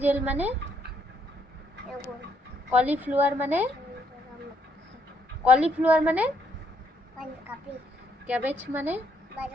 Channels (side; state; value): both; normal; correlation 0.72